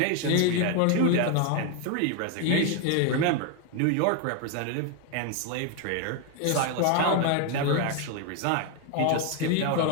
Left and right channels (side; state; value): both; different; correlation 0.01